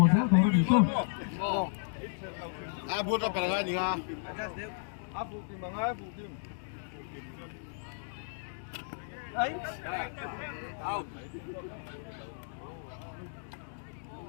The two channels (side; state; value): right; silent; digital silence